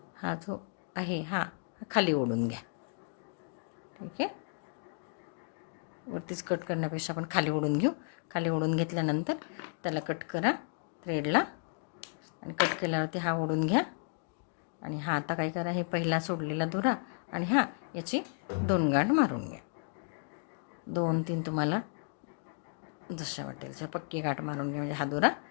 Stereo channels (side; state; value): right; silent; 55 dB below the other